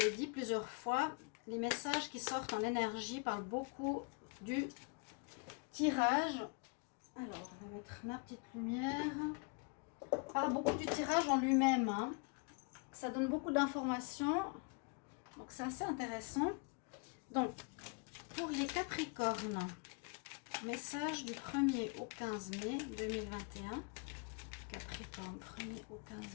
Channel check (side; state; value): right; quieter; 34.4 dB